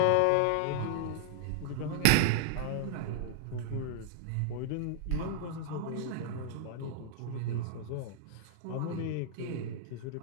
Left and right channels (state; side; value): different; both; correlation -0.01